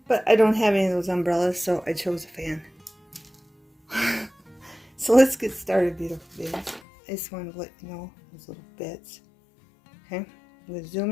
But I don't have any of those umbrellas, so I chose a fan. So let's get started, beautiful babies. I just wanted to let you know those little bits. Okay, I'm going to zoom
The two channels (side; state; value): right; drops out; at 6.8 s